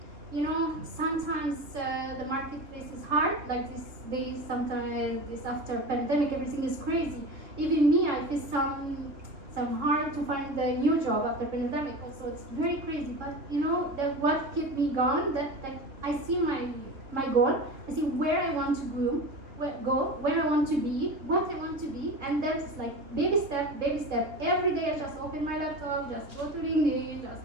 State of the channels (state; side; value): late; left; 3.4 ms